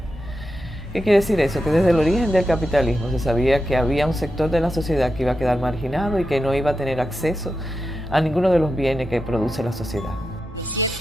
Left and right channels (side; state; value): both; normal; correlation 0.89